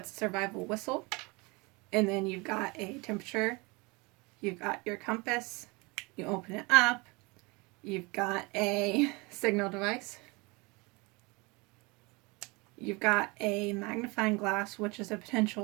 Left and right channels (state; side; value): quieter; left; 26.6 dB